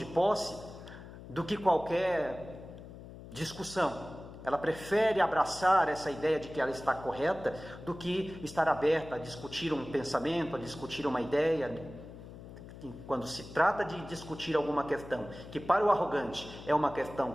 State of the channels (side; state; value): left; noise; hum, 15 dB below the sound